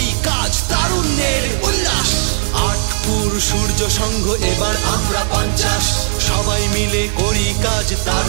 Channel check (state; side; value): silent; left; 69 dB below the other